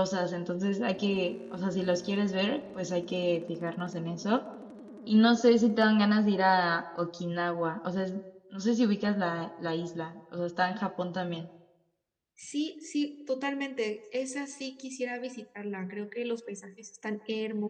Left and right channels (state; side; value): identical; both; correlation 1.00